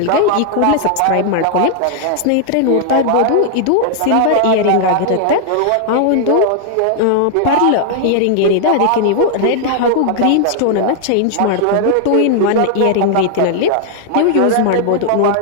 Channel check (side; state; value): both; different; correlation 0.00